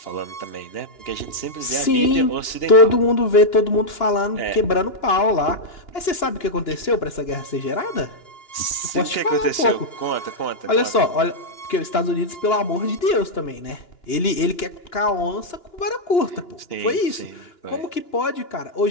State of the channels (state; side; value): late; right; 2.9 ms